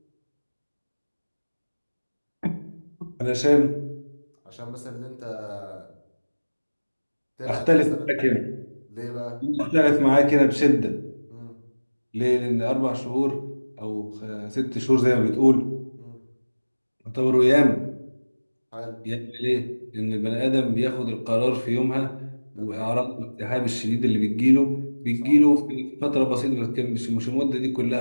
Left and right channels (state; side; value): inverted; both; correlation -1.00